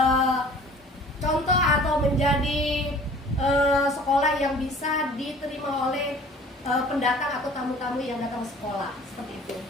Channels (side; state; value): both; normal; correlation 0.48